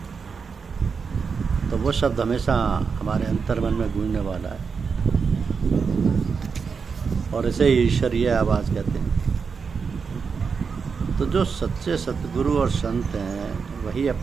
तो वो शब्द हमेशा हमारे अंतर्मन में गूंजने वाला है, और इसे ईश्वरीय आवाज़ कहते हैं। तो जो सच्चे सतगुरु और संत हैं वही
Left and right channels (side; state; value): left; quieter; 5.6 dB